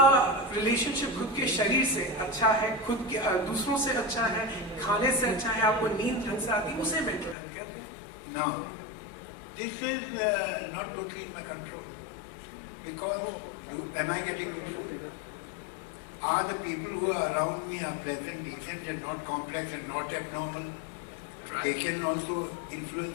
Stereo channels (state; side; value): drops out; right; at 7.4 s